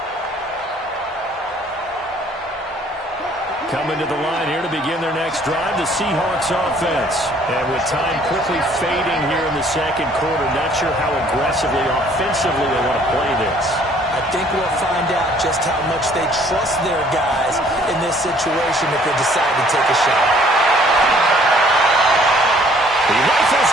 Coming to the line here to begin their next drive, the Seahawks offense. And with time quickly fading here in the second quarter, not sure how aggressively, offensively they want to play this. I think we'll find out just how much they trust their guys in this situation if they decide to take a shot. He rifles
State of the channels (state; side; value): normal; both; correlation 0.59